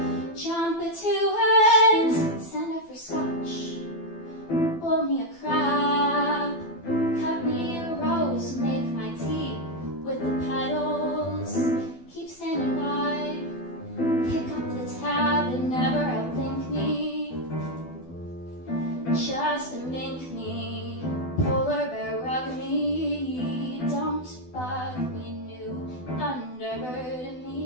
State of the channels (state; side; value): late; right; 12 ms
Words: jump to it, stand up for scotch, boil me a crab, cut me a rose, make my tea with the petals, keep standing by, pick up the tab and never outthink me, just mink me, polar bear rug me, don't bug me, new thunderbird